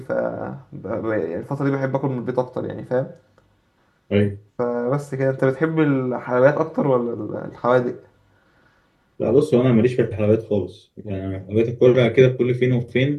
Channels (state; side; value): identical; both; correlation 1.00